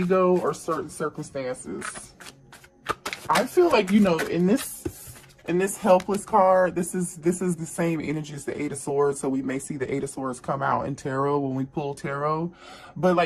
or certain circumstances. I feel like, in this helpless card, this is the same energy as the Eight of Swords, so we may see the Eight of Swords come out in tarot when we pull tarot. But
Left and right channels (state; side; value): identical; both; correlation 1.00